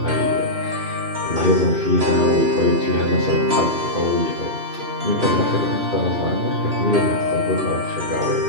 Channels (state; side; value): late; left; 2.9 ms